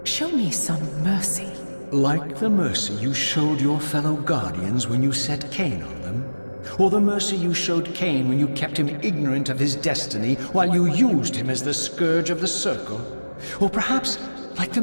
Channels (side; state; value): both; inverted; correlation -1.00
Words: Show me some mercy. Like the mercy you showed your fellow Guardians when you set Kain on them? Or the mercy you showed Kain when you kept him ignorant of his destiny while you used him as the scourge of the circle? Or perhaps like the